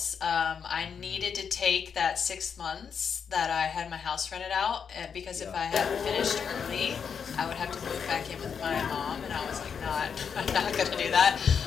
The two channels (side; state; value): right; quieter; 6.8 dB